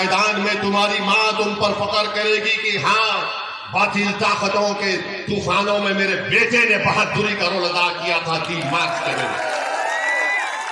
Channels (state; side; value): identical; both; correlation 1.00